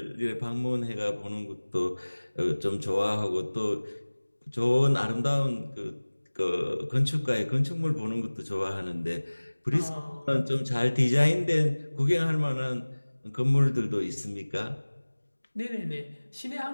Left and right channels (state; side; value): inverted; both; correlation -1.00